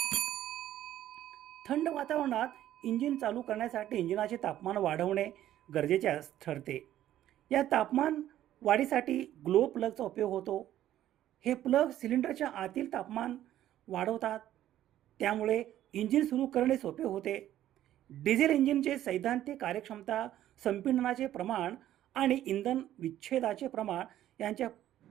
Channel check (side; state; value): left; quieter; 12.6 dB